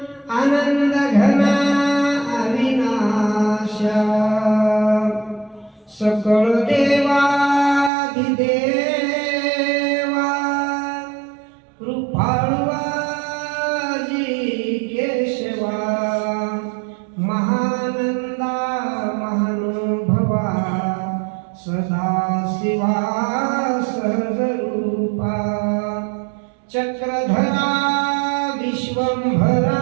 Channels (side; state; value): left; drops out; at 7.9 s